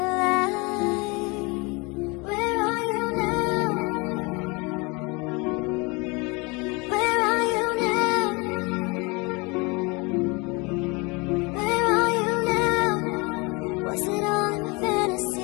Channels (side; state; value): right; quieter; 27.8 dB